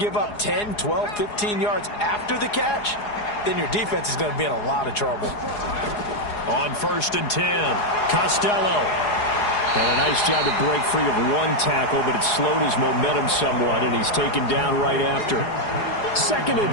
give up 10, 12, 15 yards after the catch, then your defense is going to be in a lot of trouble. On 1st and 10, Costello. And a nice job to break free of 1 tackle, but it slowed his momentum somewhat, and he's taken down right after. 2nd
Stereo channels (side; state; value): right; late; 4.8 ms